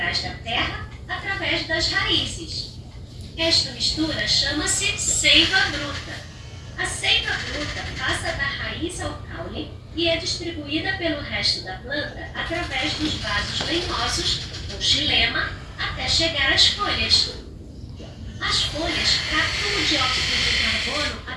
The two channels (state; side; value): identical; both; correlation 1.00